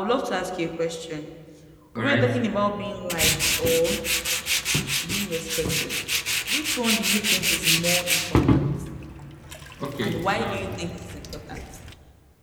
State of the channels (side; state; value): both; identical; correlation 1.00